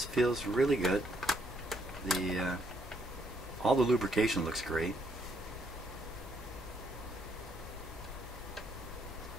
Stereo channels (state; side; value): noise; left; hum, 17 dB below the sound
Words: feels really good. All the lubrication looks great.